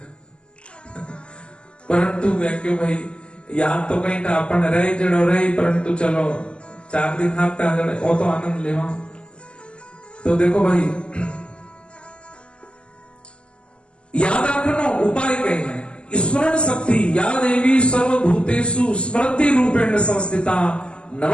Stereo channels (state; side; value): late; right; 0.052 ms